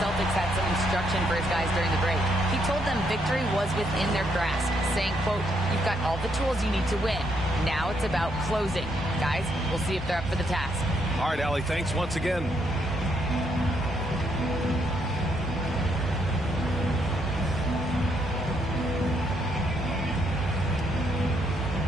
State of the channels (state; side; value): normal; both; correlation 0.75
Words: had some instruction for his guys during the break. He told them victory was within their grasp, saying, quote, "You've got all the tools you need to win. Now it's about closing." Guys, we'll see if they're up for the task. All right, Allie, thanks once again.